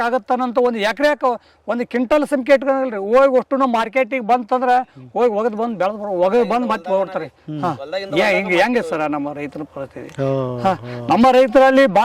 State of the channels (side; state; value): both; identical; correlation 1.00